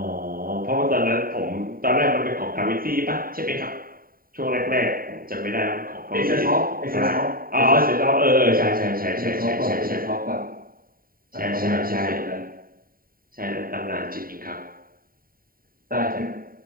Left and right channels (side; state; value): left; late; 0.42 ms